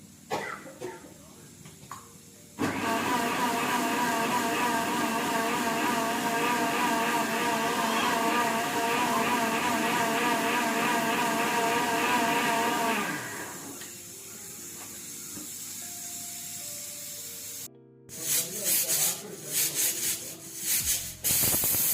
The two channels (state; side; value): identical; both; correlation 1.00